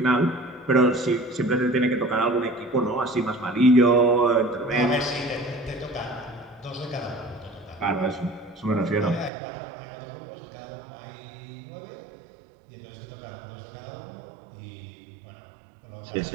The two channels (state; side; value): drops out; left; at 9.3 s